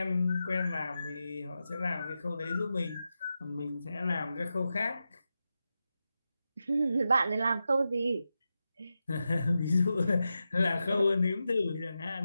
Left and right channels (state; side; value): inverted; both; correlation -0.90